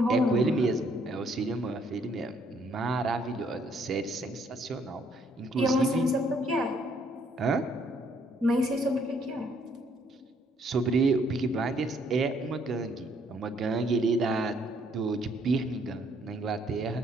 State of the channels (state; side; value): normal; both; correlation 0.67